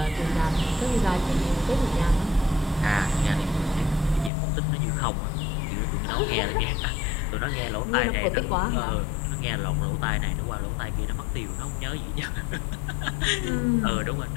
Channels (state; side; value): drops out; right; at 4.3 s